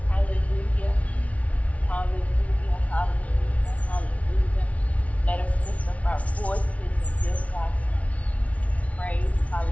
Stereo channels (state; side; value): late; right; 0.066 ms